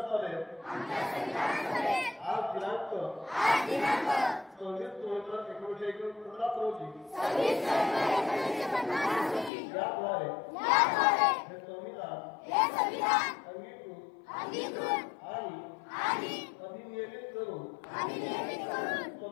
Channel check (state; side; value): drops out; right; at 9.5 s